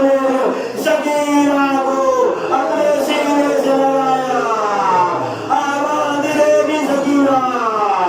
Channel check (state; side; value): identical; both; correlation 1.00